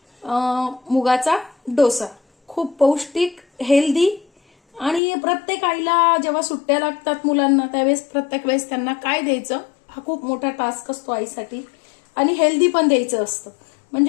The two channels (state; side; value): drops out; right; at 5.0 s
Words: मुगाचा डोसा. खूप पौष्टिक, हेल्दी आणि प्रत्येक आईला जेव्हा सुट्ट्या लागतात मुलांना त्यावेळेस प्रत्येक वेळेस त्यांना काय द्यायचं हा खूप मोठा टास्क असतो आईसाठी. आणि हेल्दी पण द्यायचं असतं.